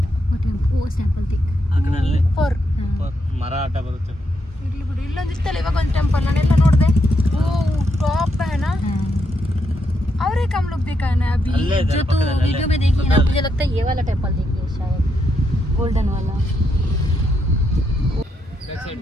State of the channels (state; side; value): normal; both; correlation 0.80